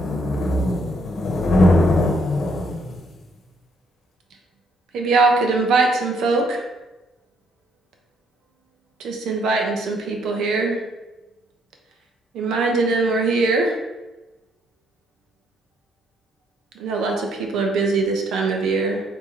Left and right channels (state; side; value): normal; both; correlation 0.69